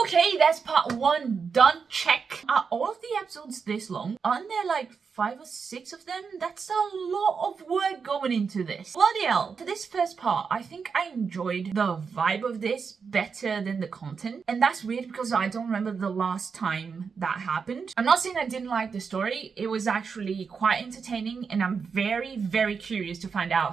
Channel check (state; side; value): quieter; left; 5.7 dB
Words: that's part 1 done. Check. Are all of the episodes this long? Aren't there like 5 or 6 of them. That's a lot of work going into this. Bloody hell. For this first part, I think I enjoyed the vibe of this better than the content. And that's weird because I don't remember the last time that happened. I'm not saying I didn't like the story. It was actually quite entertaining and I'm very, very curious to find